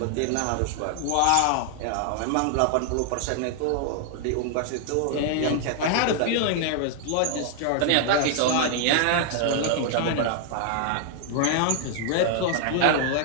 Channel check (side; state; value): both; different; correlation 0.00